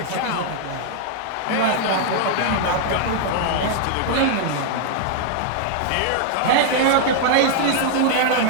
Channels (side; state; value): both; different; correlation 0.00